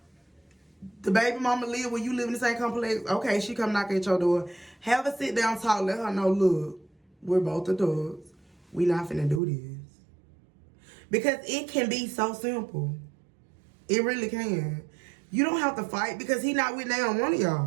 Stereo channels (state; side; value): drops out; left; at 9.4 s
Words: The baby mama live where you live in the same complex. Okay, she come knock at your door. Have a sit down talk. Let her know, look, we're both adults. We not finna do this. Because it can be so simple. It really can. You don't have to fight because he not with neither one of